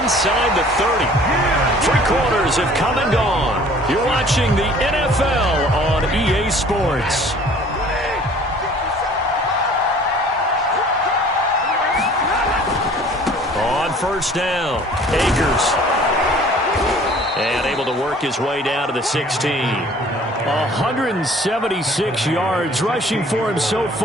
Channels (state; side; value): normal; both; correlation 0.51